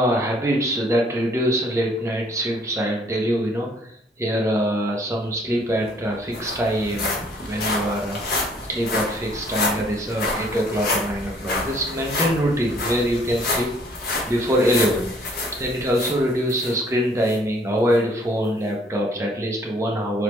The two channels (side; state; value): both; normal; correlation 0.61